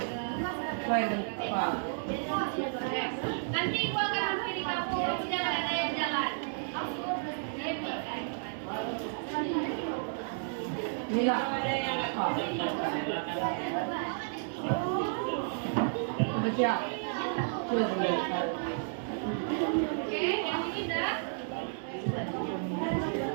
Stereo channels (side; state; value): left; silent; digital silence